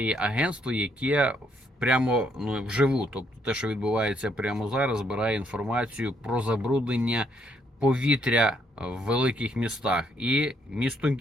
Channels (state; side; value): normal; both; correlation 0.71